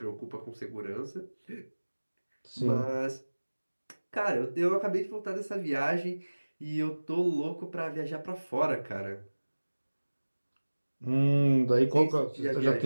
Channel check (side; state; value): both; inverted; correlation -1.00